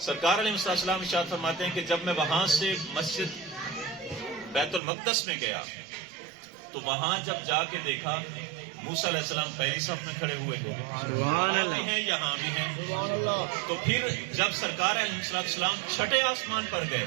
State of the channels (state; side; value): drops out; left; at 4.8 s